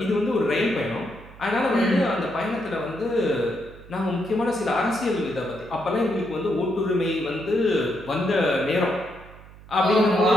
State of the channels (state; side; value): noise; right; hum, 20 dB below the sound